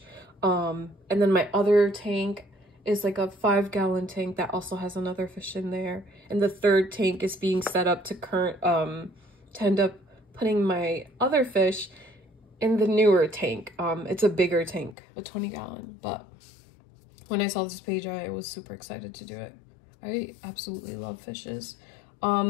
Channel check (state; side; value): drops out; right; at 15.0 s